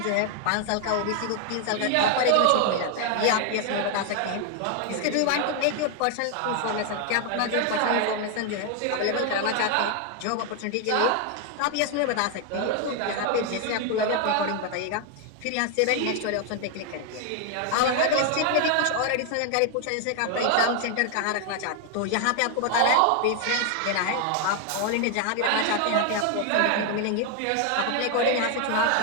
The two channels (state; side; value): different; both; correlation 0.00